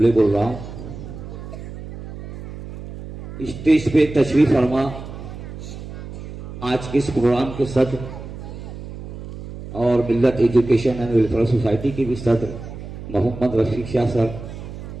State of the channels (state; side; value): noise; right; hum, 12 dB below the sound